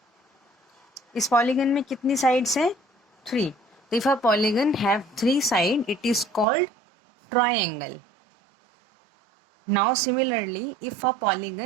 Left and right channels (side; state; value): left; drops out; at 6.5 s